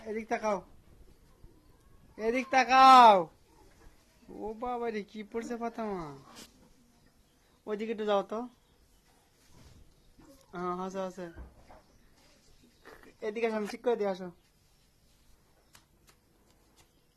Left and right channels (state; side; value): identical; both; correlation 1.00